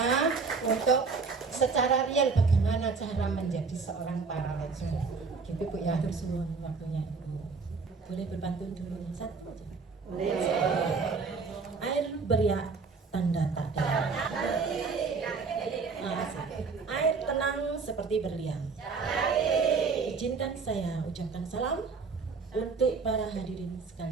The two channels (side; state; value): left; quieter; 4.7 dB